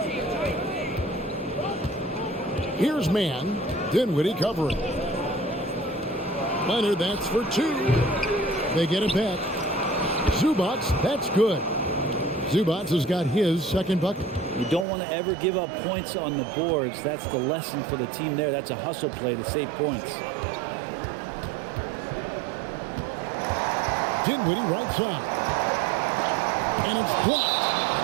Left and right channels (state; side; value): drops out; left; at 14.9 s